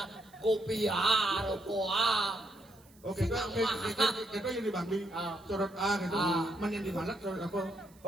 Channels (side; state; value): right; noise; hiss, 28 dB below the sound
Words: kopia, rokoa. Oke, kita yang di Bangli, sorot A gitu. Yang di Malat sorot apa?